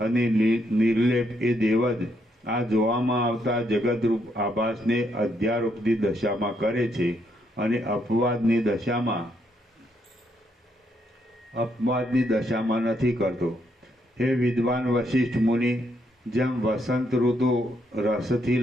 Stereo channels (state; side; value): normal; both; correlation 0.75